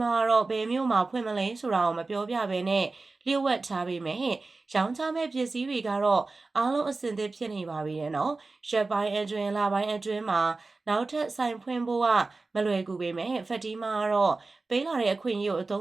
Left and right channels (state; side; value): quieter; left; 3.6 dB